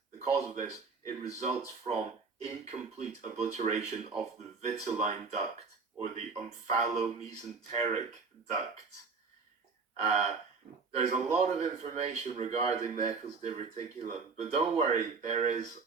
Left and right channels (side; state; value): left; quieter; 4.8 dB